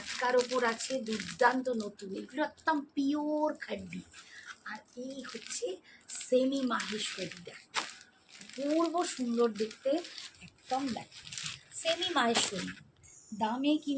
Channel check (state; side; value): identical; both; correlation 1.00